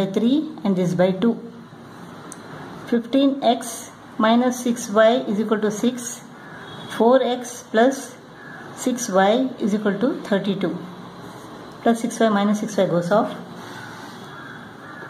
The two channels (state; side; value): identical; both; correlation 1.00